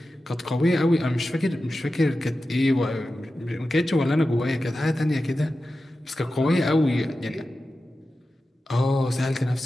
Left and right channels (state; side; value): normal; both; correlation 0.93